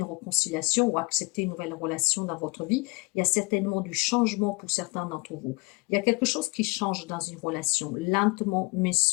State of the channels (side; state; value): right; quieter; 27.4 dB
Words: réconciliation ou accepter une nouvelle relation dans votre vie. Il y a certainement du changement pour certains d'entre vous. Il y a quelque chose qui change dans une relation, lentement mais